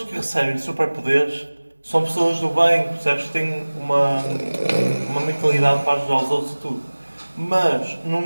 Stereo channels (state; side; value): inverted; both; correlation -1.00